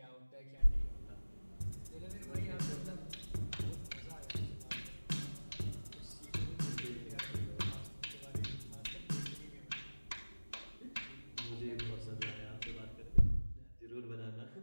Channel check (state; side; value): inverted; both; correlation -1.00